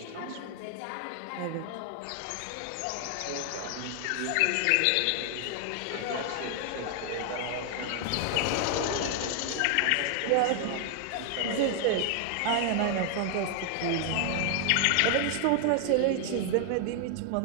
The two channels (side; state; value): both; different; correlation 0.00